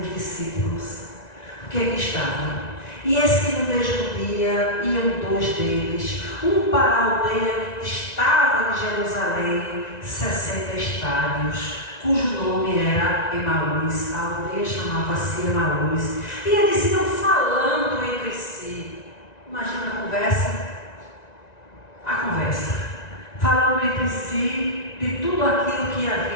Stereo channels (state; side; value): late; right; 1.9 ms